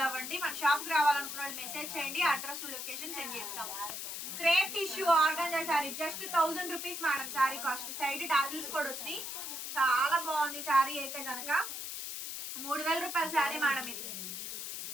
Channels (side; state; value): left; noise; hiss, 6 dB below the sound